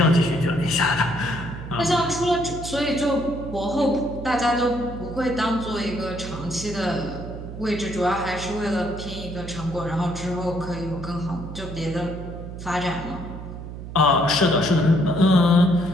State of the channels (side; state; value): right; noise; hum, 10 dB below the sound